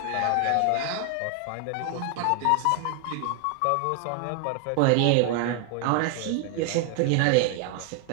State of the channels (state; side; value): different; both; correlation 0.01